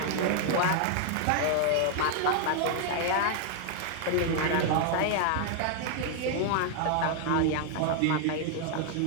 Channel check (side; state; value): both; different; correlation 0.00